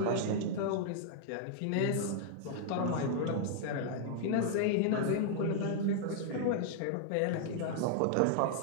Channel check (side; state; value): both; different; correlation -0.01